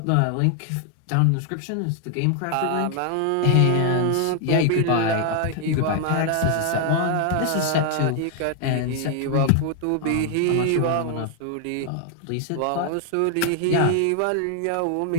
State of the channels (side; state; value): both; different; correlation 0.00